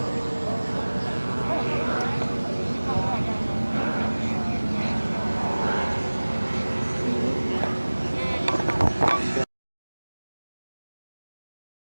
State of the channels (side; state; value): both; inverted; correlation -1.00